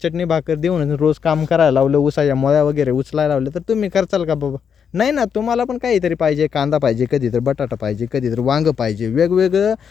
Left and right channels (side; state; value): right; quieter; 7.2 dB